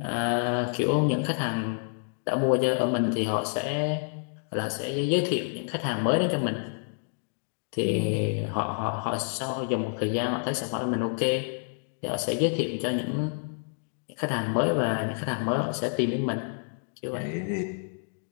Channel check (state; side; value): silent; right; 59 dB below the other